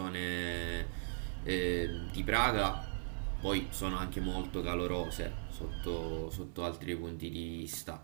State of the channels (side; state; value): left; silent; digital silence